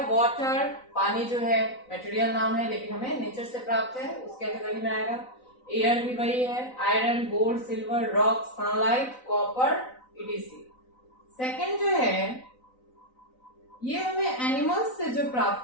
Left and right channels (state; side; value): late; right; 3.9 ms